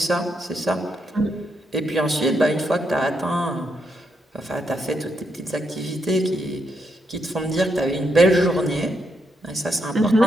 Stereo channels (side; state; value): both; normal; correlation 0.80